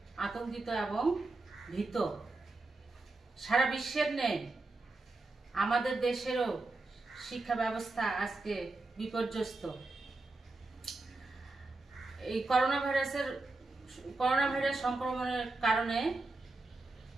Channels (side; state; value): left; quieter; 3.2 dB